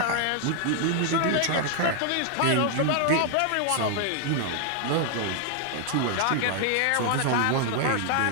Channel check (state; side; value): different; both; correlation 0.00